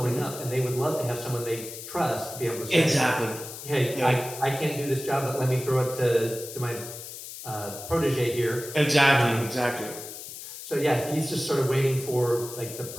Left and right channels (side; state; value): left; noise; hiss, 11 dB below the sound